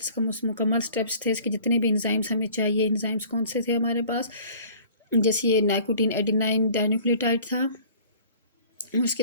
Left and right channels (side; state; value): both; inverted; correlation -0.49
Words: का मुकम्मल स्टेप्स थे, इसके जितने भी एंजाइम्स हमें चाहिए, एंजाइम्स कौन से थे हमारे पास, जैसे ये नाइकोटीन एडेनाइन डाइन्यूक्लियोटाइड था। उसके